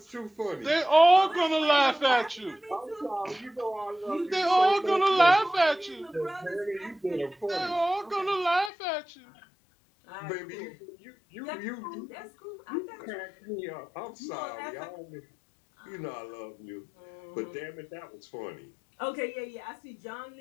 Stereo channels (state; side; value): drops out; right; at 8.7 s